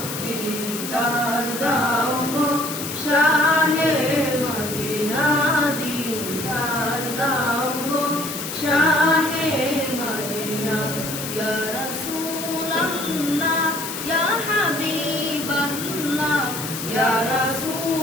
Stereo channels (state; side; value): noise; left; hiss, 7 dB below the sound